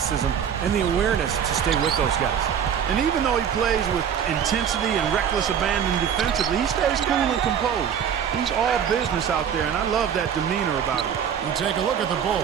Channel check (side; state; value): left; quieter; 8.3 dB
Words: and the awareness to stay with those guys. And even though he plays with intensity and reckless abandon defensively, he stays cool and composed. He's all business out there, and I love that demeanor about him. You take a look at the